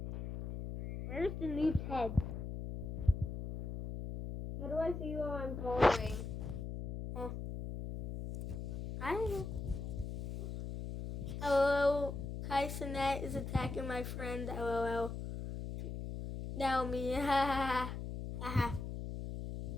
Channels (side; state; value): left; noise; hum, 6 dB below the sound